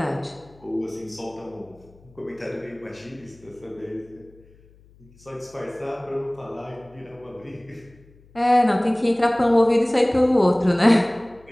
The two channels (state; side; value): noise; left; hum, 27 dB below the sound